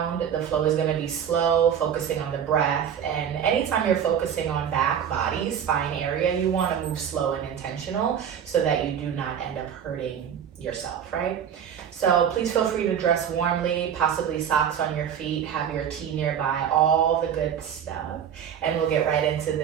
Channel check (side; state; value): left; quieter; 8.6 dB